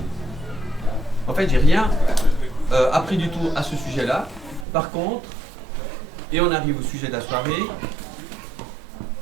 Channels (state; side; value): drops out; left; at 4.7 s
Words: En fait, j'ai rien appris du tout à ce sujet-là. Par contre, et on arrive au sujet de la soirée,